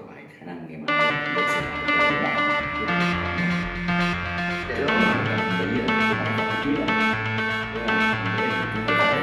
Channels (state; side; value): identical; both; correlation 1.00